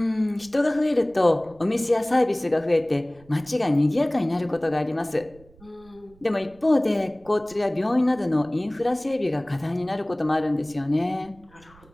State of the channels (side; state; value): right; noise; rumble, 27 dB below the sound